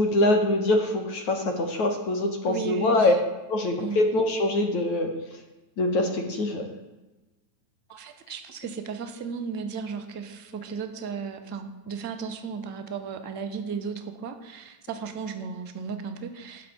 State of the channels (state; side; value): late; right; 9.1 ms